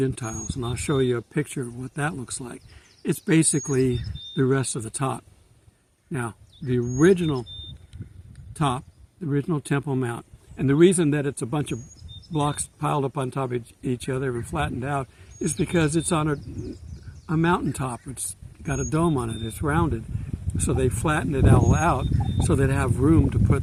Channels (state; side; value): identical; both; correlation 1.00